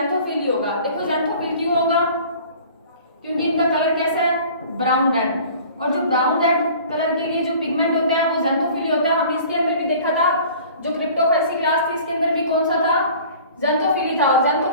ही होगा। देखो ज़ैंथोफिल क्यों होगा, क्योंकि इनका कलर कैसा है, ब्राउन रेड, और जो ब्राउन रेड कलर के लिए जो पिगमेंट होता है वो ज़ैंथोफिल होता है। हमने इसके अंदर भी देखा था, जो क्रिप्टोफाइसी क्लास थी इसके अंदर भी कौन सा था, ज़ेंथोफिली था, और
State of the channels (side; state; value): both; inverted; correlation -0.46